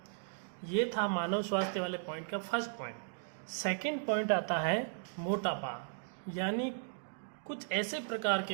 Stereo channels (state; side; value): silent; left; digital silence